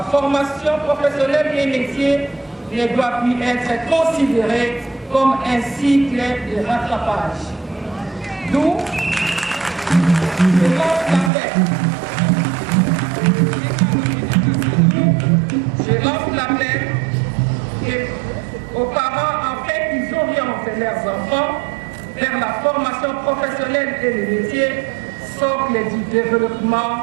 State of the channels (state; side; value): drops out; left; at 11.3 s